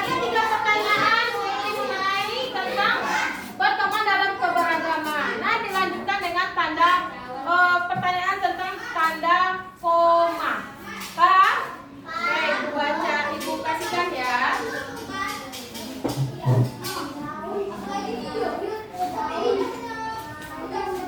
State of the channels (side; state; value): both; identical; correlation 1.00